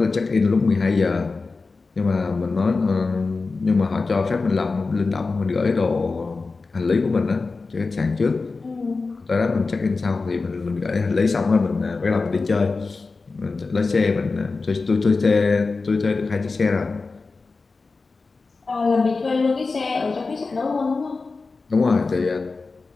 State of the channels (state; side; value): quieter; right; 4.0 dB